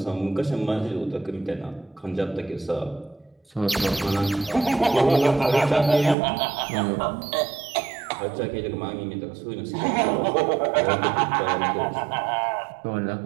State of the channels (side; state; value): left; drops out; at 6.2 s